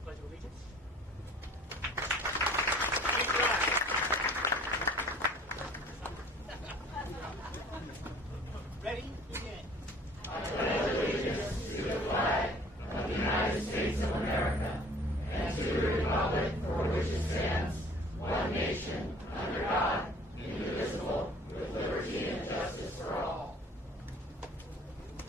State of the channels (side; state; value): both; normal; correlation 0.51